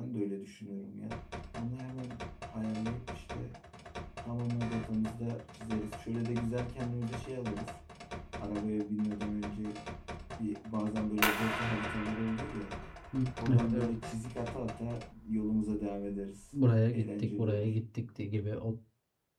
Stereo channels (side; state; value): both; identical; correlation 1.00